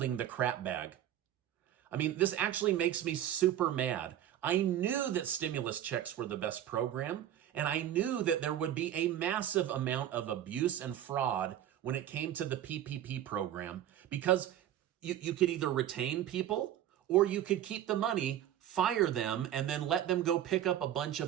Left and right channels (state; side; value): quieter; left; 11.4 dB